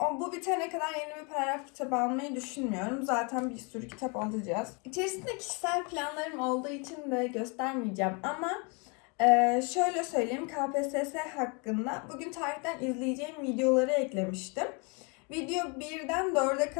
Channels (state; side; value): quieter; right; 33.1 dB